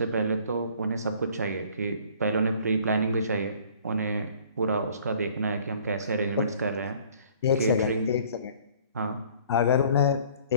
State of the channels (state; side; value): inverted; both; correlation -0.54